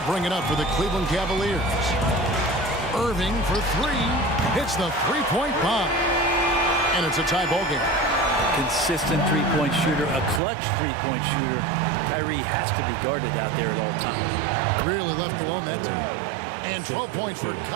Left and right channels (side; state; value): left; drops out; at 10.4 s